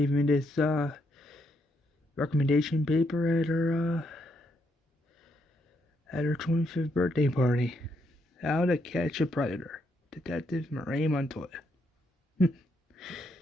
me this recommendation paper at her 25th birthday party. How to Catch a Predator. Detective Renee Montoya. Had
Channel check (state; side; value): normal; both; correlation 0.77